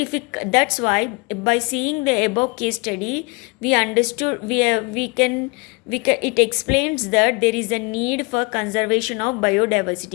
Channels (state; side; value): quieter; right; 28.7 dB